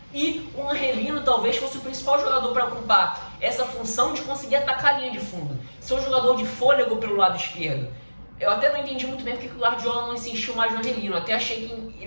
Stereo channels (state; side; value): inverted; both; correlation -1.00